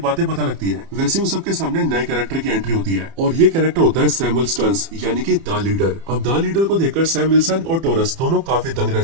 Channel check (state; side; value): late; left; 30 ms